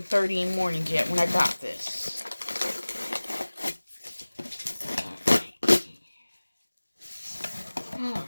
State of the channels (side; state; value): both; inverted; correlation -1.00